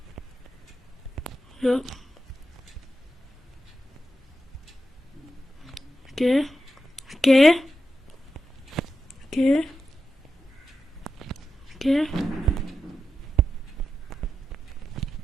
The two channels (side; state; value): both; normal; correlation 0.88